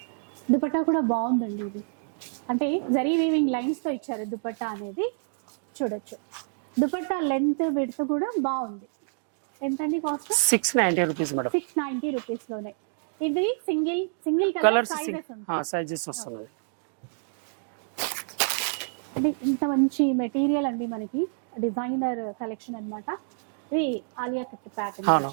దుపట్టా కూడా బాగుందండి. ఇది అంటే జరీ వీవింగ్ లైన్స్ తో ఇచ్చారు దుపట్టా అనేది. చూడొచ్చు దుపట్టా లెంత్ విడ్త్ కూడా బాగుంది. ఎంతండి కాస్ట్? 690 rupees madam. 690 రూపీస్ లోనే. ఇది సింగిల్ కలర్ సైజెస్ ఉంటాయి. సైజెస్ వస్తున్నాయి. అంటే ఇంత మంచి మెటీరియల్ అండి మనకి. డిజైనర్ కలెక్షన్ అన్నమాట. ఇది ఆలియా కట్ ప్యాటర్న్ అవును,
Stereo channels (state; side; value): silent; left; digital silence